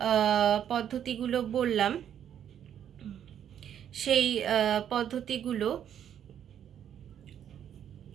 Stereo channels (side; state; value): left; quieter; 9.6 dB